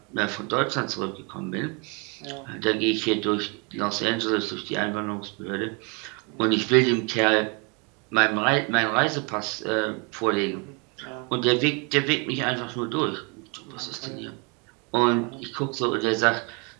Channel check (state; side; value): quieter; left; 32.7 dB